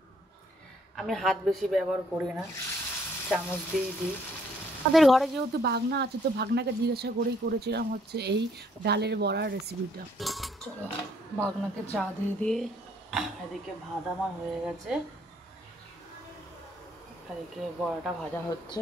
আমি হাত বেশি ব্যবহার করি না, চামচ দিয়েই দিই। আমাদের ঘরে যেহেতু ভাগনা আছে, তো ভাগনাকে জিজ্ঞাসা করেই করেছিলাম হচ্ছে এই ডালের বড়ার রেসিপিটা। চলো ভাগনাকে চা দিয়ে দিয়ে এদিকে ভাত আমার হয়ে গেছে, এদিকে বড়াটা ভাজা হচ্ছে।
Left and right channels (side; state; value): both; normal; correlation 0.66